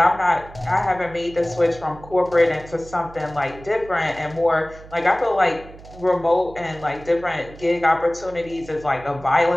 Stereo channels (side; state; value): right; noise; hum, 19 dB below the sound